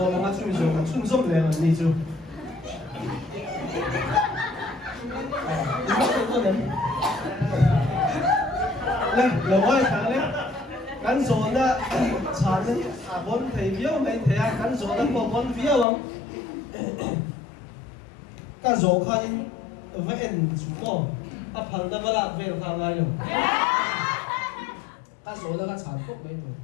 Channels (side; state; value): right; drops out; at 15.9 s